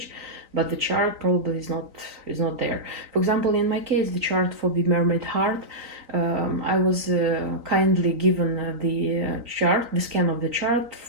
but the chart probably is not there. For example, in my case, the chart for the Mermaid Heart, I was kindly given the chart, the scan of the chart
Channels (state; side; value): late; left; 3.9 ms